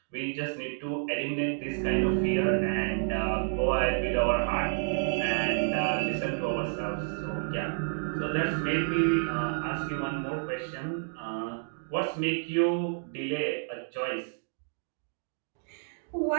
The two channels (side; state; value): left; silent; digital silence